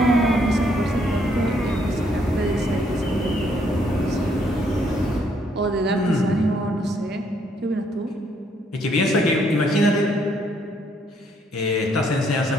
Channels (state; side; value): normal; both; correlation 0.70